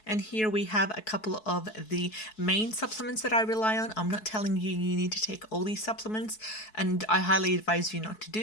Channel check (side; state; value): right; late; 4.6 ms